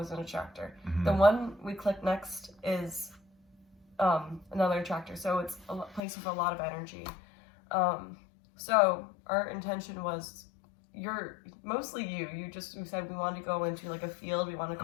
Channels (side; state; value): right; drops out; at 6.0 s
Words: an attractor. Mhm. The one we click next is another attractor. So it's a place with a lot of energy. So our intention was, mostly you said we wanted to go into like a field. We want to I